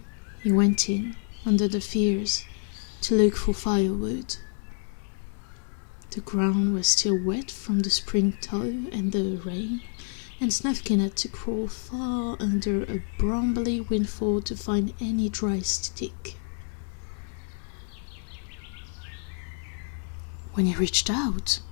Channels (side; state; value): right; silent; 59 dB below the other